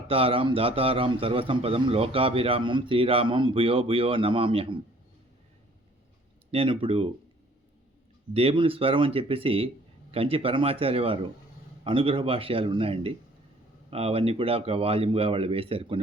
దాతారాం సర్వసంపదం లోకాభిరామం శ్రీరామం భూయో భూయో నమామ్యహం. నేను ఇప్పుడు దేవుని స్వరం అని చెప్పేసి కంచి పరమాచార్య వారు అనుగ్రహ భాష్యాలు ఉన్నాయండి. అవన్నీ కూడా ఒక వాల్యూమ్గా వాళ్ళు వేశారు,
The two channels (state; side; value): normal; both; correlation 0.56